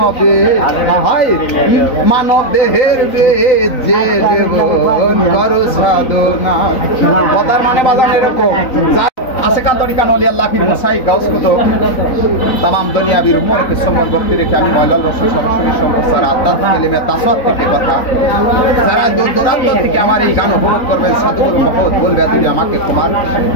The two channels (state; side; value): late; right; 3.9 ms